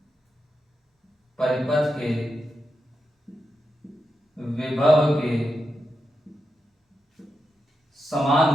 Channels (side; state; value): both; normal; correlation 0.87